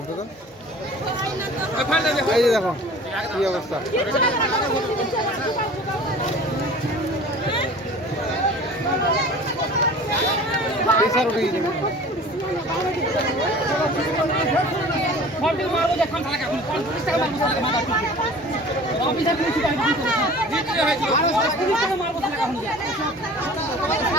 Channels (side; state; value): both; normal; correlation 0.43